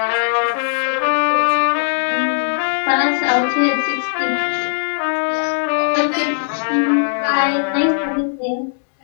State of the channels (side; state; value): right; silent; digital silence